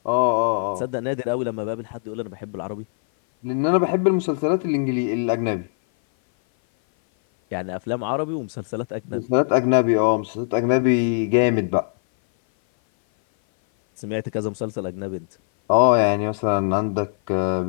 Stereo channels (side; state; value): right; silent; 58 dB below the other